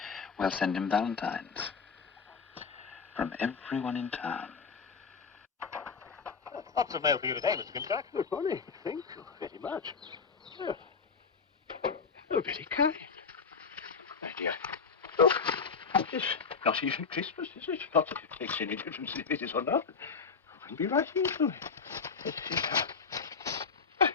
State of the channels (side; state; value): right; quieter; 5.4 dB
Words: We'll send him valentines. From everyone in town. Lots of mail for you today, Mr. Grimsdyke. Good morning. Thank you very much. Oh, very kind. My dear, look, it's not even Christmas, is it? Not that it makes any difference if it is or not. I can be right into it.